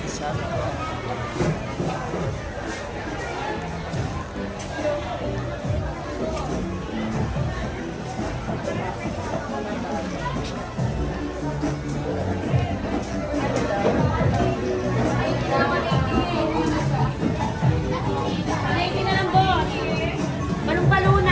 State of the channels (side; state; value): both; identical; correlation 1.00